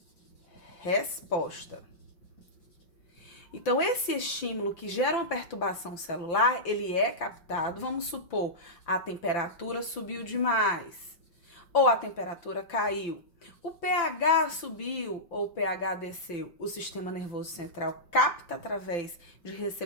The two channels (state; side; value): late; right; 5.9 ms